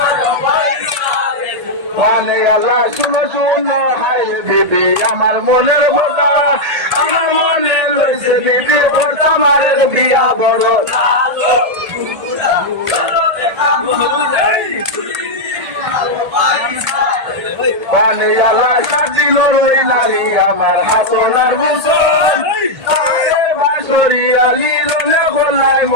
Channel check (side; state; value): left; late; 1.8 ms